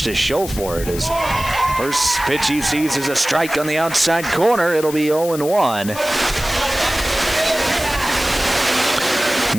to show for it. His first pitch he sees is a strike on the outside corner. It'll be 0-1.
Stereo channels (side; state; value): left; noise; hiss, 11 dB below the sound